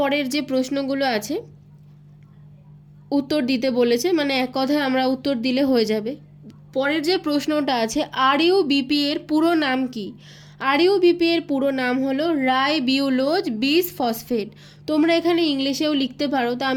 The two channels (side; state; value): both; identical; correlation 1.00